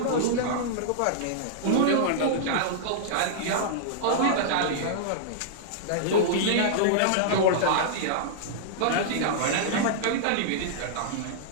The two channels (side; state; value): both; different; correlation -0.02